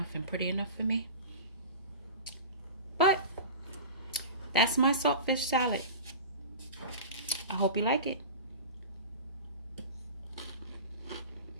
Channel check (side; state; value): both; inverted; correlation -0.31